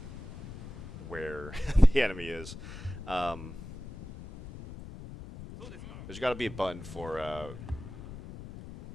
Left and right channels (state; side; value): noise; left; rumble, 12 dB below the sound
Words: where the enemy is. There's got to be a button for